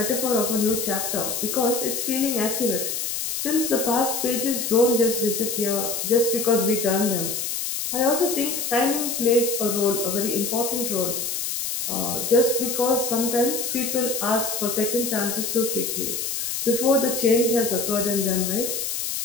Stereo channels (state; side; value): noise; left; hiss, 2 dB below the sound